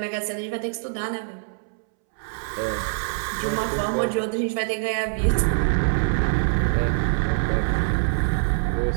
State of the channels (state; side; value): silent; left; 62 dB below the other